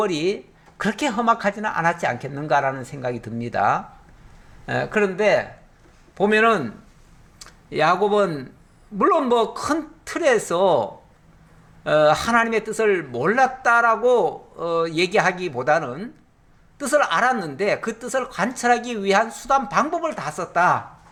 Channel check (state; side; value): identical; both; correlation 1.00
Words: 그렇게 험악하지는 않았지 않겠는가라는 생각이 듭니다. 그런데 보면은 야곱은 물론 뭐 큰 틀에서 하나님의 뜻을 몰랐다라고 얘기하기보다는 뜻을 알았는데 그 뜻을 관철하기 위한 수단 방법을 다 썼다